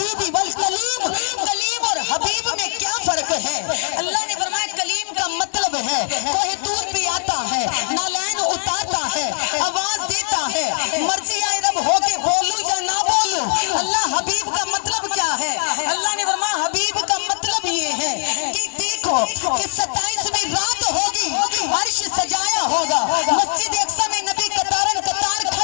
बल कलीम, कलीम और हबीब में क्या फर्क है? अल्लाह ने फरमाया कलीम का मतलब है कोई दूर पे आता है, नालैन उतारता है, आवाज देता है, मर्जी आए रब होके बोलूं या ना बोलूं। अल्लाह हबीब का मतलब क्या है? अल्लाह ने फरमाया हबीब का मतलब ये है कि देखो कि 27वीं रात होगी, अर्श सजाया होगा, मस्जिद अक्सा में नबी कतारन कतार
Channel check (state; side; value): silent; right; 64 dB below the other